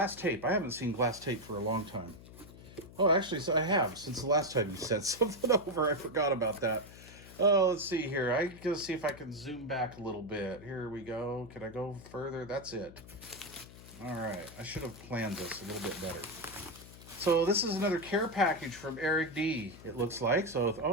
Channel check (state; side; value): noise; left; hum, 18 dB below the sound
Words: tape. I haven't seen glass tape for a long time. Oh, actually, so I have. Since the last time you sent something over, I forgot about that. Oh, let's see here. I gotta see if I can zoom back a little bit. Here we go. Can I go further? That's it. All right. I should have planned this a little bit better. So this is another care package from Eric D, it looks like. So,